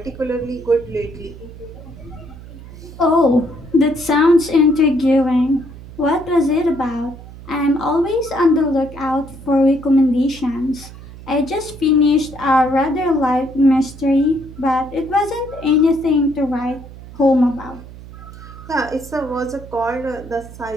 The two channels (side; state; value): right; noise; hum, 16 dB below the sound